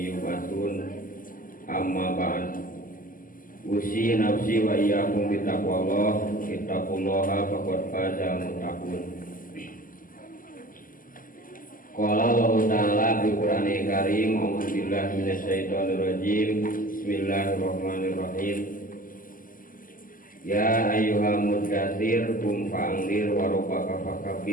yub'atsun. Amma ba'd. Usi nafsi wa iyyakum bi taqwallah. Ittaqullaha faqad faza muttaqun. Qala Allah Ta'ala bil Qur'anil Karim, a'udzu billahi minasyaitonir rajim. Bismillahirrahmanirrahim. Ya ayyuhal muddatsir qum fa'anzir wa rabbaka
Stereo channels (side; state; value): right; late; 0.41 ms